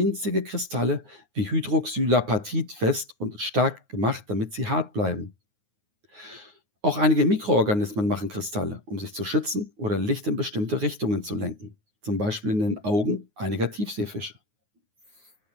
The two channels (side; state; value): left; late; 9.5 ms